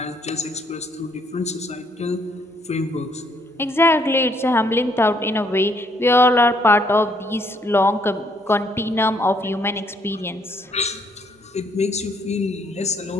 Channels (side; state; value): both; normal; correlation 0.68